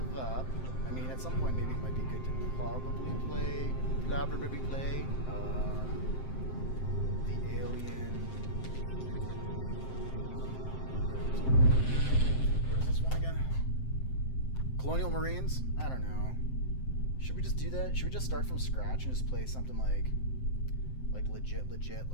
up. I mean, at some point, maybe it might be good to probably play the Alien. What is this one again? Colonial Marines? I don't know. Should we just do that? Should we just start from scratch and just play something like legit,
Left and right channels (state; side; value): late; right; 7.7 ms